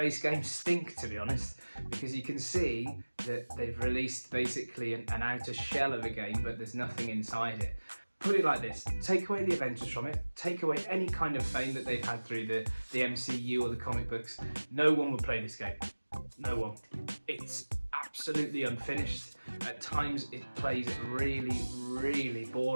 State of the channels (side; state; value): both; inverted; correlation -1.00